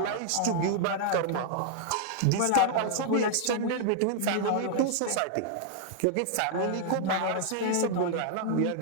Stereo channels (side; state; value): both; different; correlation -0.01